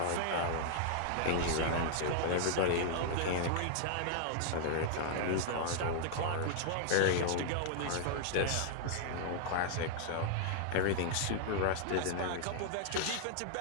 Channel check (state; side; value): different; both; correlation -0.01